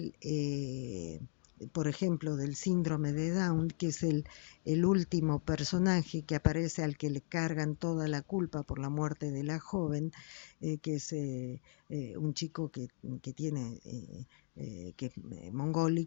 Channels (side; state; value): right; silent; digital silence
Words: por ejemplo, del síndrome de Down, que es el último personaje que aparece, al que le cargan toda la culpa por la muerte de la joven, que es un chico que tiene que es